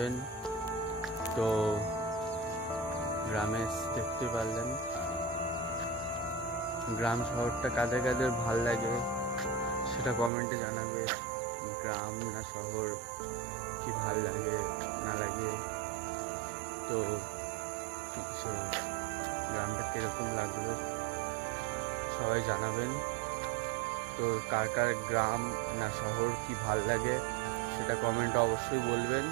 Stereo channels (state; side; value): drops out; left; at 10.3 s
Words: তো গ্রামে দেখতে পারলেন গ্রাম শহরটা কাদের কাদের ভাল লাগে সেটা কমেন্টে জানাবে। গ্রাম না শহর কি ভাল লাগে না লাগে, তো গ্রামটা কিরকম লাগলো সবাই জানাবেন। তো কার কার গ্রাম না শহর কি ভাল লাগে সেটা কমেন্টে অবশ্যই বলবেন।